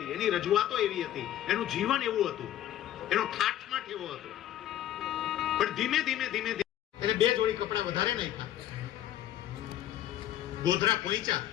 એની રજૂઆતો એવી હતી, એનું જીવન એવું હતું, એનો ઠાઠમાઠ એવો હતો. પણ ધીમે ધીમે ધીમે એને બે જોડી કપડા વધારે નાખ્યા. ગોધરા પહોંચ્યા,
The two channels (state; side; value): quieter; right; 12.3 dB